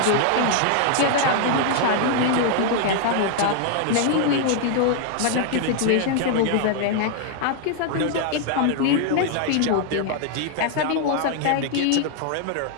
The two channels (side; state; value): both; different; correlation 0.00